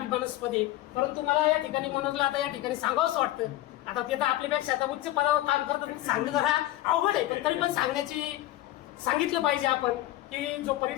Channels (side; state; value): right; quieter; 15.7 dB